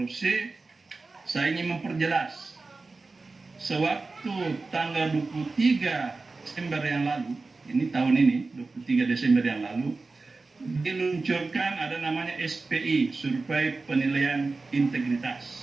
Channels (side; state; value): left; quieter; 3.7 dB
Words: Saya ingin memperjelas, sewaktu tanggal 23 Desember yang lalu, ini tahun ini 23 Desember yang lalu, diluncurkan ada namanya SPI, Survei Penilaian